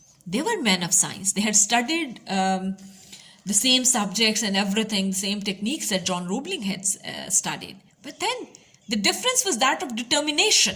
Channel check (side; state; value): both; identical; correlation 1.00